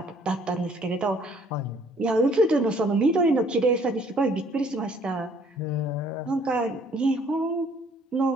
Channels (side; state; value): both; normal; correlation 0.61